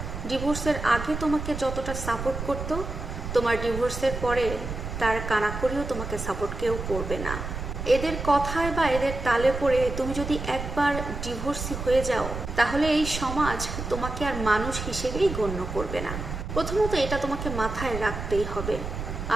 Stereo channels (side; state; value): right; noise; rumble, 6 dB below the sound